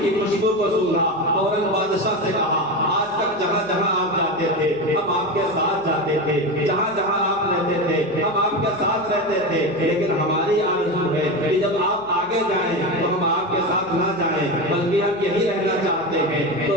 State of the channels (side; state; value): left; noise; hum, 26 dB below the sound